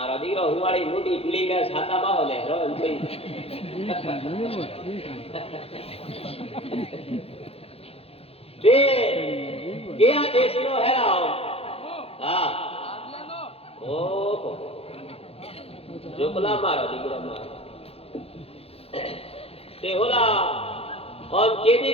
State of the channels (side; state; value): right; late; 0.29 ms